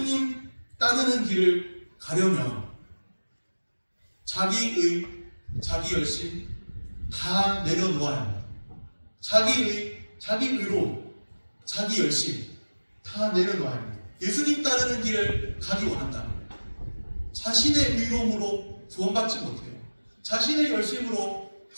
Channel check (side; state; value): both; inverted; correlation -1.00